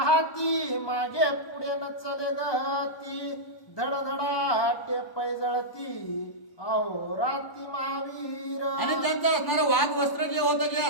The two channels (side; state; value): right; late; 1.0 ms